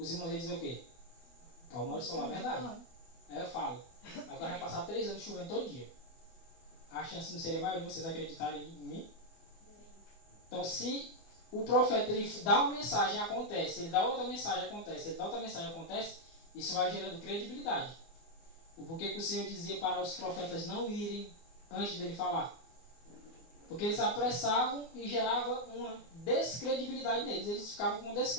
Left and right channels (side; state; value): right; late; 24 ms